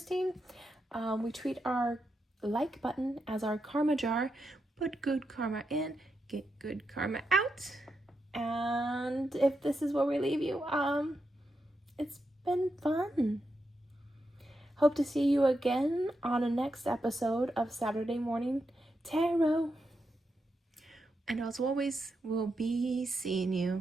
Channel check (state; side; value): normal; both; correlation 0.85